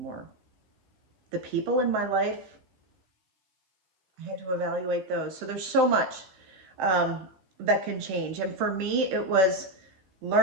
The people in my life, I had to evaluate those. So there's so much that can change. And for me, it was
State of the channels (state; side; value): late; left; 16 ms